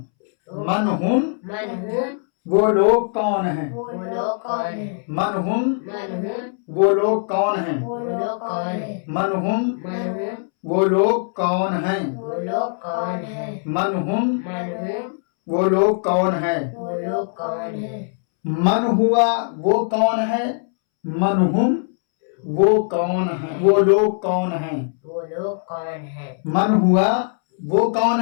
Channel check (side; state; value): right; silent; 65 dB below the other